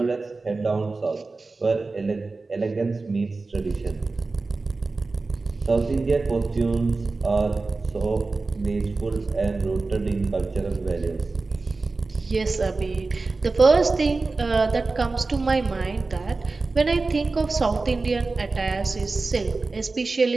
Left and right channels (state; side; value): quieter; left; 3.7 dB